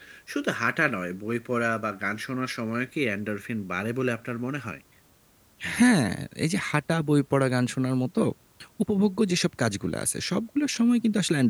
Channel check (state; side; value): identical; both; correlation 1.00